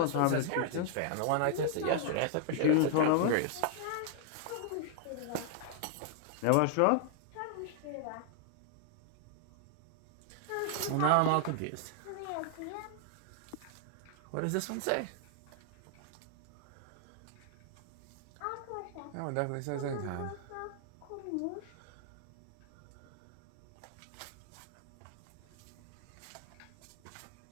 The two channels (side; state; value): both; different; correlation 0.00